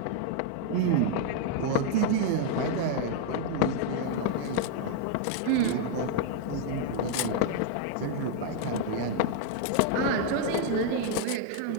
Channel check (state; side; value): different; both; correlation -0.01